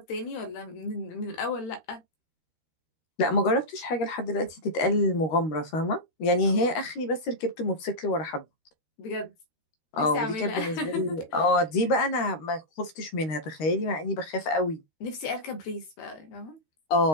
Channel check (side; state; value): right; late; 13 ms